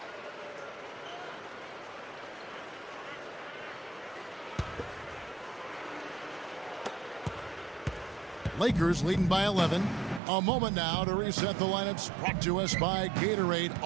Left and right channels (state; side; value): drops out; left; at 10.2 s